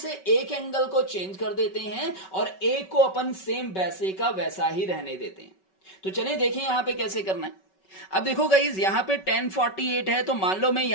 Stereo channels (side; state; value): right; late; 5.3 ms